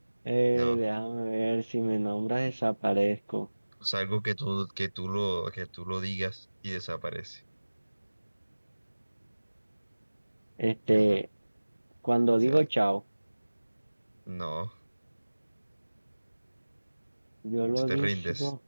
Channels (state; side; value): inverted; both; correlation -1.00